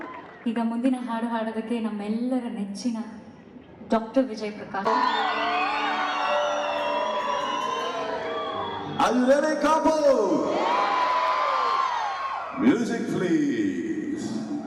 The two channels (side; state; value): both; identical; correlation 1.00